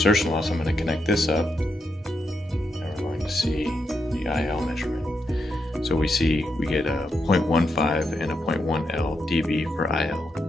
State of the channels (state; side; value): normal; both; correlation 0.83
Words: loss, I'm going to connect this up, and we're going to see the IL measurement. So we get a 0.15 and a 0.1 L dB for IL.